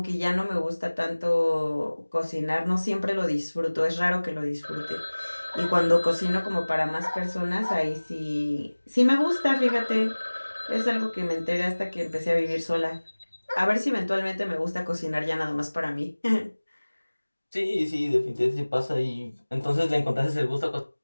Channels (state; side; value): inverted; both; correlation -1.00